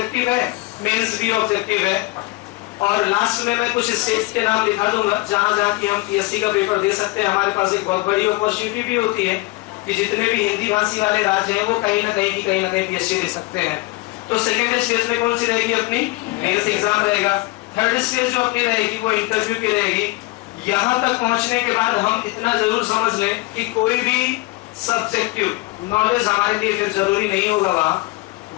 है, मेंस भी ऑब्जेक्टिव है। और लास्ट में मैं कुछ स्टेट्स के नाम लिखा दूंगा जहां जहां की हम पीएससी का पेपर दे सकते हैं। हमारे पास एक बहुत बड़ी अपॉर्चुनिटी भी होती है कि जितने भी हिंदी भाषी वाले राज्य हैं वो कहीं ना कहीं पीएससी दे सकते हैं। तो सेकेंड स्टेज में कौन सी रहेगी, अपनी मेंस एग्जाम रहेगा। थर्ड स्टेज जो अपनी रहेगी वो इंटरव्यू की रहेगी। यहाँ तक पहुंचने के बाद हम इतना जरूर समझ लें कि कोई भी सब्जेक्टिव नॉलेज हमारे लिए फिर जरूरी नहीं होगा।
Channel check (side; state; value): right; quieter; 22.0 dB